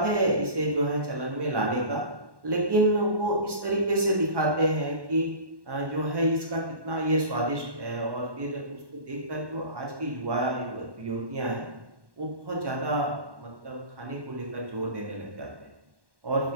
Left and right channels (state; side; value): late; left; 1.1 ms